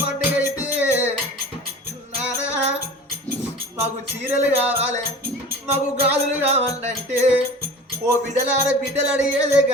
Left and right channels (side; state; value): both; normal; correlation 0.38